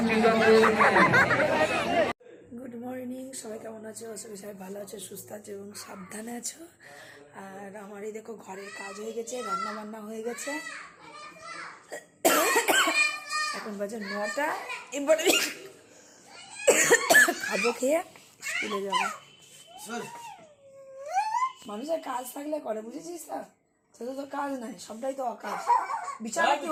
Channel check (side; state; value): both; identical; correlation 1.00